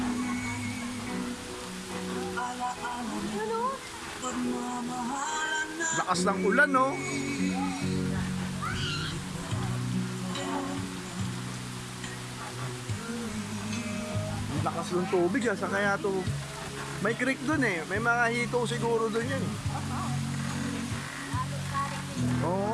Ano? Lakas ng ulan, no? Lakas ng tubig, sa kaya to. May creek dun eh. May mga hito siguro dun yan eh.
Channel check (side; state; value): both; identical; correlation 1.00